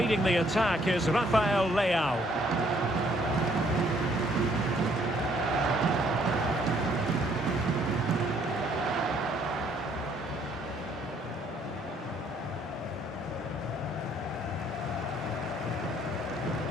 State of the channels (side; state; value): both; normal; correlation 0.65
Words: the attack is Rafael Leao.